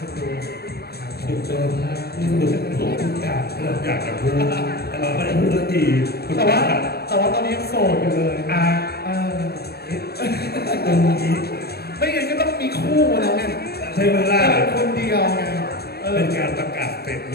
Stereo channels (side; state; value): right; late; 0.46 ms